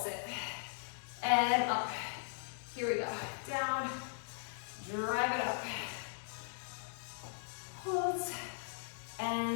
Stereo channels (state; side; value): silent; right; digital silence